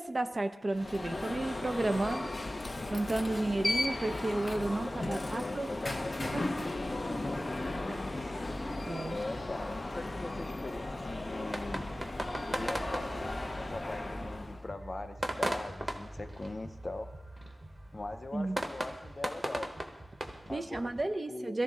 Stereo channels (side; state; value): both; normal; correlation 0.96